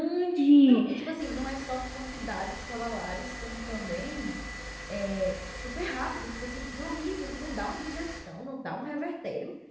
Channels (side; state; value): both; identical; correlation 1.00